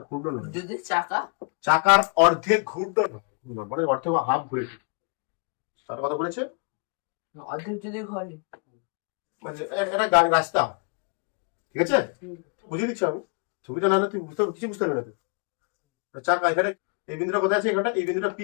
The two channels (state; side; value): quieter; right; 38.1 dB